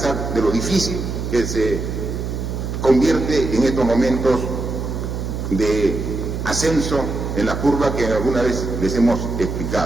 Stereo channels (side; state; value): right; noise; hum, 4 dB below the sound